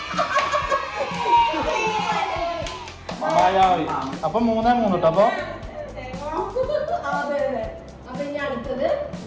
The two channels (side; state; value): both; identical; correlation 1.00